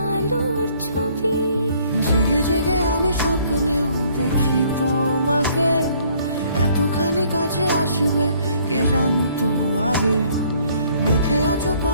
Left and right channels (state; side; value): inverted; both; correlation -0.61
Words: ছবি। জেগে জেগে আমি স্বপ্নেও দেখি তোমাকে, এতখানি কাছে আসবে কে জানতো আগে। মেখে আছো